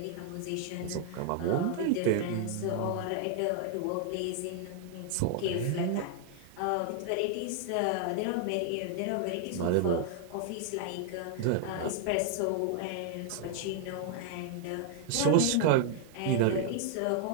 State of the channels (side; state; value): both; different; correlation 0.00